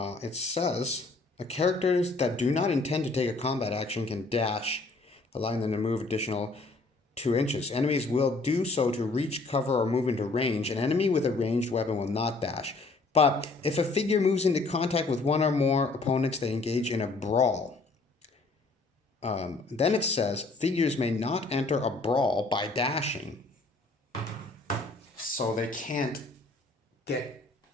It says, characters that do not intend to take a combat action can dash, allowing them to move additional 2 inches. Enemies will do so to reach, cover, or move into range. An enemy with a ranged weapon will not dash. But if a figure moves into contact with 1 or more opponents, they engage in a brawl. Then it says, figures may not enter a brawl by dashing. So they can't get,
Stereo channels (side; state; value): right; quieter; 3.5 dB